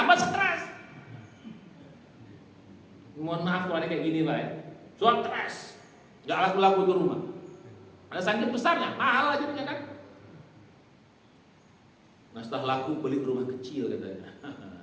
stres. Mohon maaf kalau ada kayak gini Pak ya, soal stres, nggak laku itu rumah. Ada saking besarnya, mahal aja kan. Nah setelah laku beli rumah kecil katanya.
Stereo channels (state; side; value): identical; both; correlation 1.00